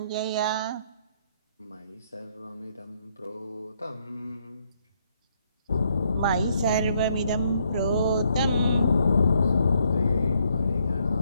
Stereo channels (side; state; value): both; inverted; correlation -0.72